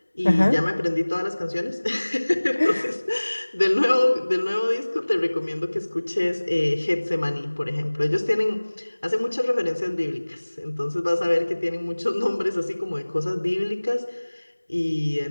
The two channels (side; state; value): both; inverted; correlation -1.00